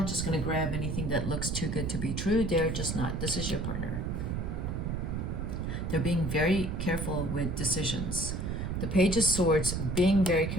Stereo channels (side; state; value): right; noise; rumble, 2 dB below the sound